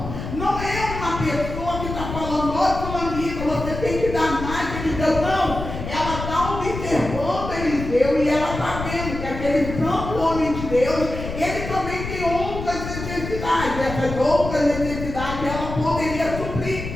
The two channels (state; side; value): noise; left; rumble, 7 dB below the sound